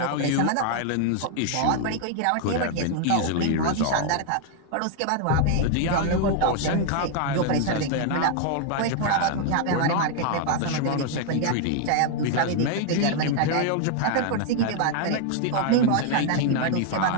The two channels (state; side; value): different; both; correlation 0.00